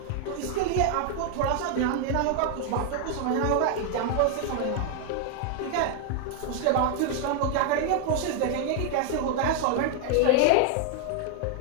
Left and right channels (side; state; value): both; different; correlation 0.00